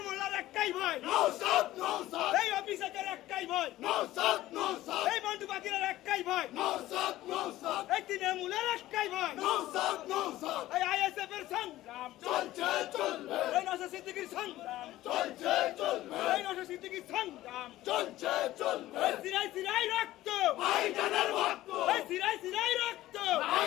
মোল্লার একটাই ভয় নওশাদ নওশাদ এই অফিসারের একটাই ভয় নওশাদ নওশাদ এই বন্ধু বাকিরের একটাই ভয় নওশাদ নওশাদ এই তৃণমূলের একটাই ভয় নওশাদ নওশাদ এই আইএসএফের সংগ্রাম চলছে চলবে এই নওশাদ সিদ্দিকীর সংগ্রাম চলছে চলবে এই নওশাদ সিদ্দিকীর সংগ্রাম চলছে চলবে এই সিরাই সিরাই রক্ত ভাইজানের ভক্ত এই সিরাই সিরাই রক্ত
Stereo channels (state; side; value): quieter; right; 15.5 dB